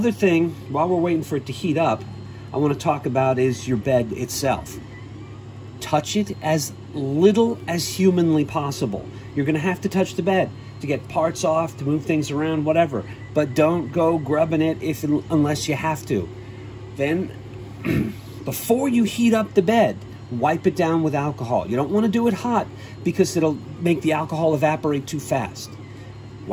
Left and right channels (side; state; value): both; identical; correlation 1.00